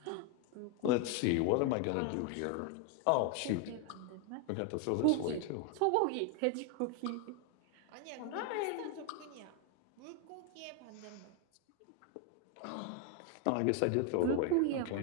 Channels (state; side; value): different; both; correlation 0.01